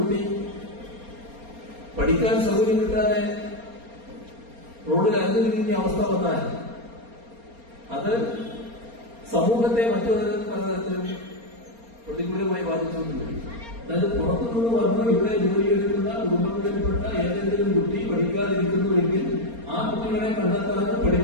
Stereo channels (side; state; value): left; late; 4.3 ms